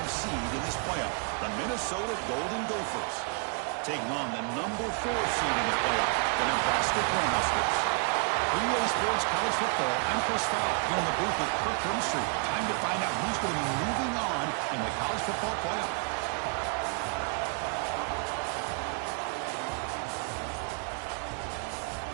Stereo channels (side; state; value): left; quieter; 38.6 dB